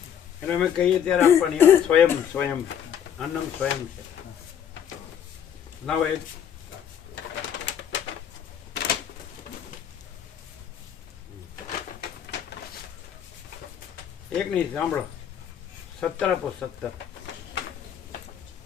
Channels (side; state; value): right; quieter; 8.8 dB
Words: એટલે અમે કહીએ ત્યારે આપવાની સ્વયં સ્વયં અન્નમ સ્વયં છે. લાવો એક નહીં સાંભળો. 17 આપો.